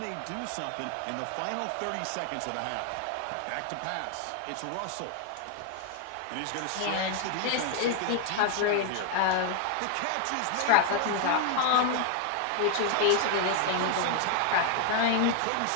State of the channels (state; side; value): different; both; correlation 0.00